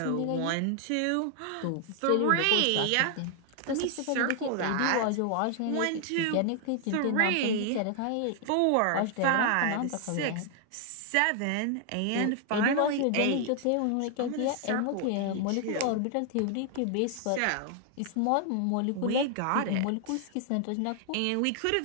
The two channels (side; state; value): both; different; correlation 0.00